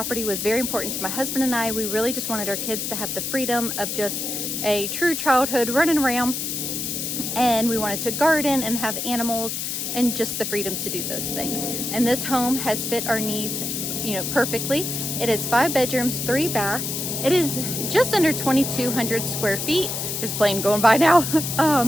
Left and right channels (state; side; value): noise; left; hiss, 3 dB below the sound